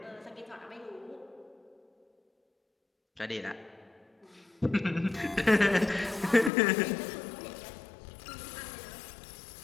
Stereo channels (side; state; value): right; drops out; at 6.5 s